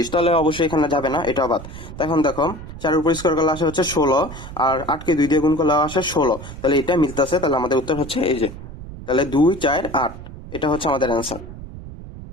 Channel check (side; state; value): right; noise; rumble, 13 dB below the sound